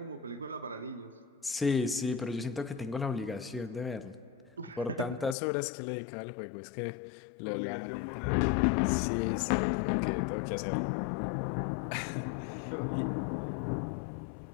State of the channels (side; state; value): right; drops out; at 5.4 s